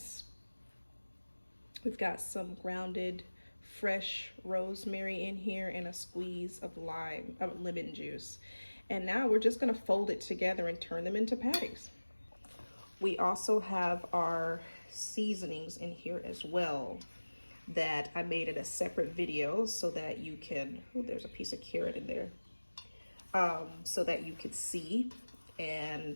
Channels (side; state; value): both; inverted; correlation -1.00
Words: We've got some grounded fresh rosemary in here and a squeeze of lemon juice. And now we're just gonna fold it together and turn them into patties. We also have our seasonings in here as well that I made in a separate video so that you can, oh, there's a piece of carrot in there, so that you could see.